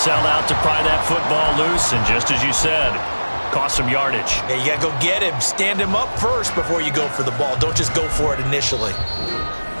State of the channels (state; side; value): inverted; both; correlation -1.00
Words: out to pry that football loose, and just as you said, cost some yardage. Yeah, you got to go get him. Stand him up first before you go for the ball. Don't just go for it initially.